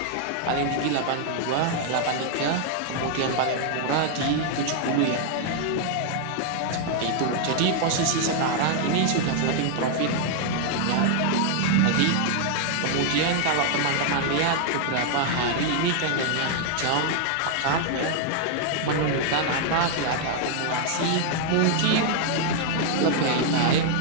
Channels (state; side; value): different; both; correlation 0.00